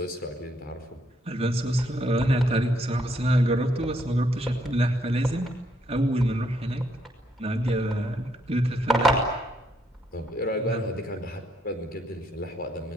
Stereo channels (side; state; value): both; normal; correlation 0.73